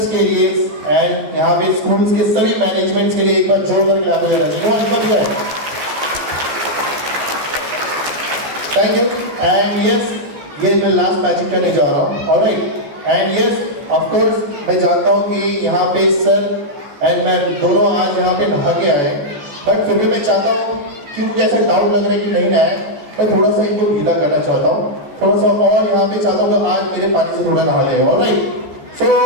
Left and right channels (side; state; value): left; late; 14 ms